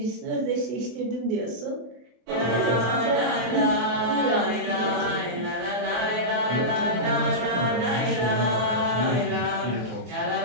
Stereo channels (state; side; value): late; left; 24 ms